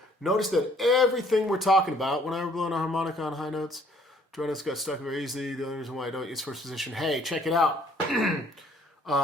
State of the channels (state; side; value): normal; both; correlation 0.61